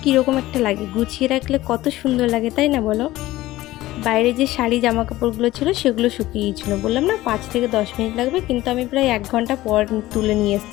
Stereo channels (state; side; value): quieter; right; 16.7 dB